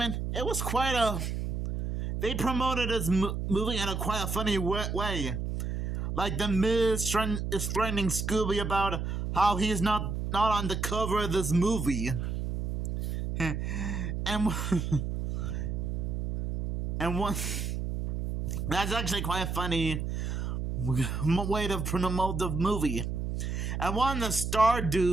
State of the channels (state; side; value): noise; right; hum, 2 dB below the sound